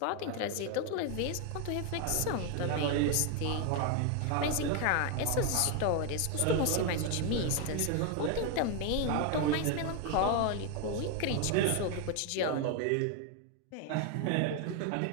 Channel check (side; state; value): both; different; correlation 0.01